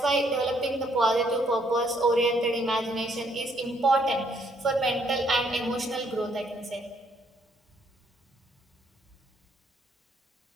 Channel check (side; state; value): both; normal; correlation 0.69